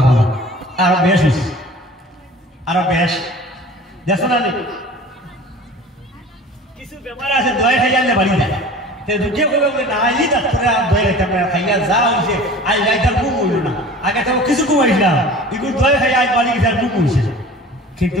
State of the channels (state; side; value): normal; both; correlation 0.42